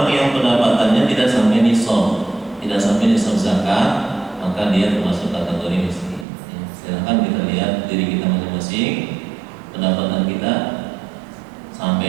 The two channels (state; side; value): drops out; left; at 6.2 s